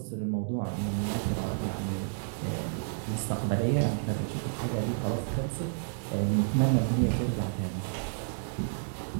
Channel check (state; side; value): silent; left; digital silence